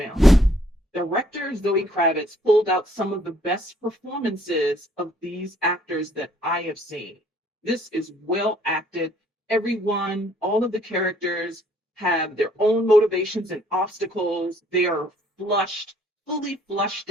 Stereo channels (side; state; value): both; normal; correlation 0.63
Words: Director Zoe Kravitz pulled out some of the best performances of these actors that I have seen. This is well acted. Everyone, all of the characters have their own motivations and obstacles. They are fully flushed